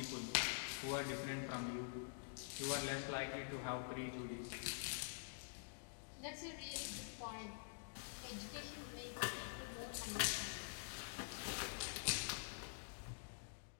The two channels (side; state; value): right; silent; digital silence